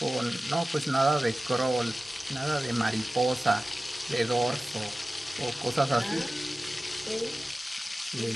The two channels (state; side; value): normal; both; correlation 0.96